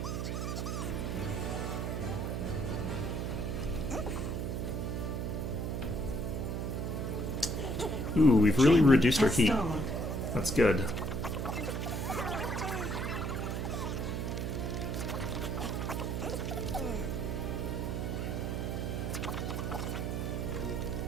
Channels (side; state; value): right; noise; hum, 2 dB below the sound